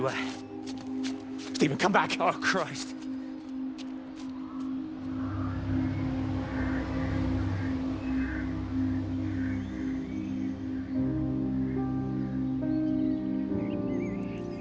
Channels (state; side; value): identical; both; correlation 1.00